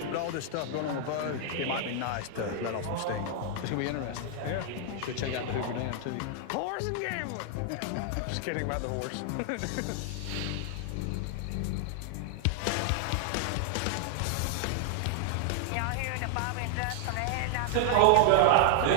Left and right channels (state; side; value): different; both; correlation 0.00